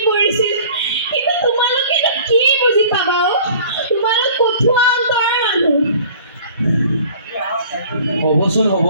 পৰিছিল। কিন্তু তোমালোকেতো কি বুজি পাবা অ? তোমালোক কঠুৱা অন্তৰৰ মানুহ। হ'বচোন হ'ব,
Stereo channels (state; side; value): inverted; both; correlation -0.48